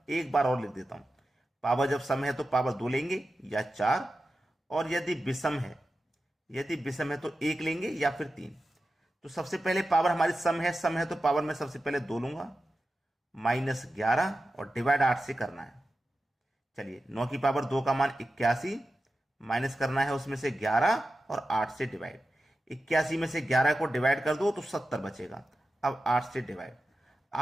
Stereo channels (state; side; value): normal; both; correlation 0.92